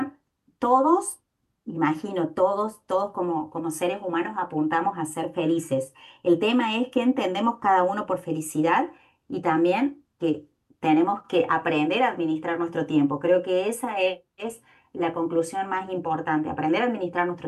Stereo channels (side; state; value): both; identical; correlation 1.00